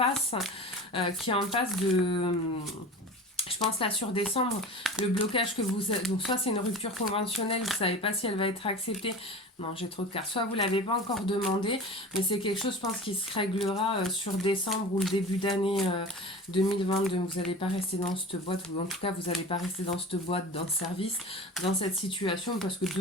de... Je pense là sur décembre, le blocage que vous... Donc soit c'est une rupture conventionnelle, vous ne savez pas si elle va être acceptée. Non, j'ai trop de cartes. Soit vous ne l'avez pas encore demandé, mais c'est quelque chose, je pense, qui se réglera sur décembre ou le début d'année 2022. Vous n'allez pas rester dans cette boîte, ou en tout cas, vous n'allez pas rester dans cette boîte, dans ce service, dans cette situation, parce que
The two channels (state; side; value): normal; both; correlation 0.34